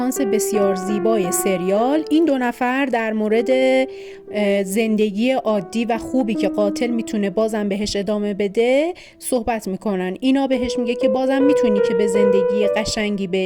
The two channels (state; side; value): identical; both; correlation 1.00